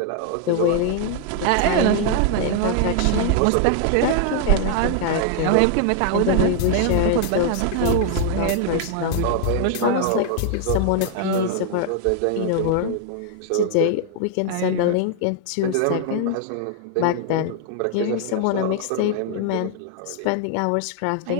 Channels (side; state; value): both; different; correlation 0.00